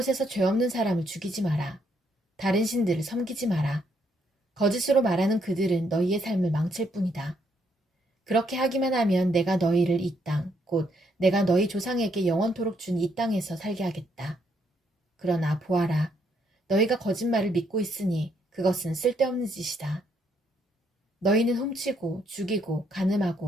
죄 없는 사람을 죽이지 마라. 다른 신들을 섬기지 마라. 거짓으로 말하는 그들은 너희의 삶을 망칠 뿐이다. 그렇게 하기만 하면 내가 너희를 이 땅, 곧 내가 너희 조상에게 영원토록 준 이 땅에서 살게 하겠다. 그러나 보아라. 너희가 거짓말을 믿고 있으니 그것은 쓸데없는 짓이다. 너희는 훔치고 죽이고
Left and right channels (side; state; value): both; normal; correlation 0.73